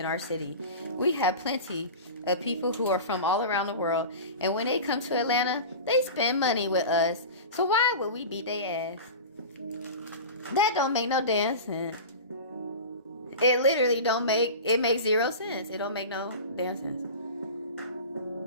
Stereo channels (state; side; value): inverted; both; correlation -0.31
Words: our city. We have plenty of people who are from all around the world. And when they come to Atlanta, they spend money with us. So why would we beat their ass? That don't make no damn sense. It literally it makes 0 sense. It don't make no damn sense.